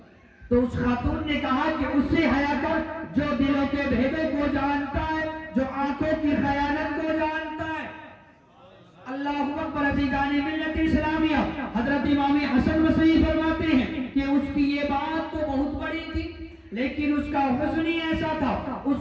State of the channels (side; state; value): both; identical; correlation 1.00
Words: تو اس خاتون نے کہا کہ اس سے حیا کر جو دلوں کے بھیدوں کو جانتا ہے، جو آنکھوں کی خیانت کو جانتا ہے۔ اللہ اکبر عزیزان ملت اسلامیہ، حضرت امام حسن بصری فرماتے ہیں کہ اس کی یہ بات تو بہت بڑی تھی، لیکن اس کا حسن ہی ایسا تھا،